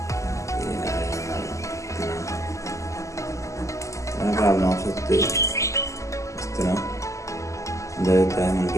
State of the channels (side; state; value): right; late; 0.15 ms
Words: आप नाप सकते हो इस तरह देता है।